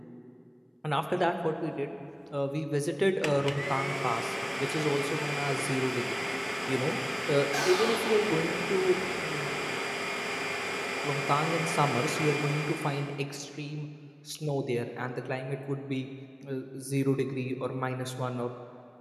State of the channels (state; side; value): identical; both; correlation 1.00